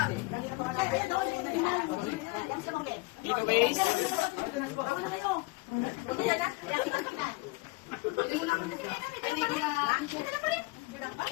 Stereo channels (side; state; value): right; quieter; 24.5 dB